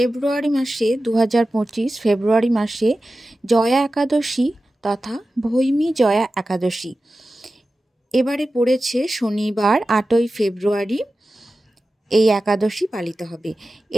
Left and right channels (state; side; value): normal; both; correlation 0.94